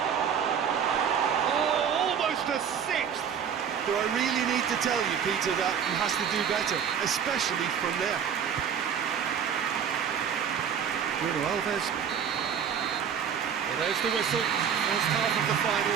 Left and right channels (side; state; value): left; quieter; 7.8 dB